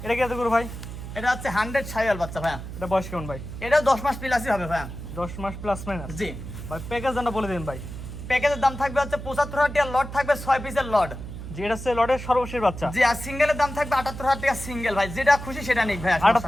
এটা কি এত গরু ভাই? এটা হচ্ছে 100 ছাইয়াল বাচ্চা ভাই। এটা বয়স কেমন ভাই? এটা 10 মাস প্লাসই হবে ভাই। 10 মাস প্লাস মাইনাস। জি ভাই প্যাকেজ দামটা বলে দিন ভাই। প্যাকেজের দাম থাকবে হচ্ছে 75,000 টাকা, লট থাকবে 6 পিসের লট। যে এটা হচ্ছে লটের সর্বশেষ বাচ্চা। জি, আর সিঙ্গেলের দাম থাকবে 78,000 টাকা সিঙ্গেল ভাই, যেটা খুশি সেটা নিক ভাই।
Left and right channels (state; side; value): noise; right; hum, 10 dB below the sound